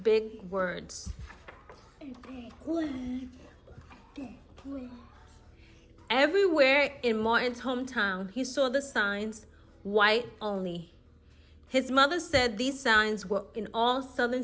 words. Big words. Big words. Everywhere in Martin's hometown, he saw the signs, white only. His mother said these signs were in all southern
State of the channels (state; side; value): identical; both; correlation 1.00